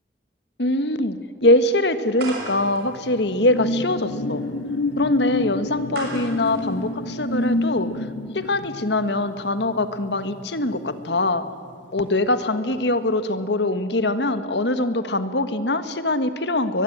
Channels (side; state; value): both; normal; correlation 0.04